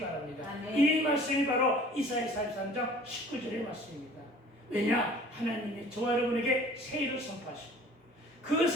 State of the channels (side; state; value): both; normal; correlation 0.49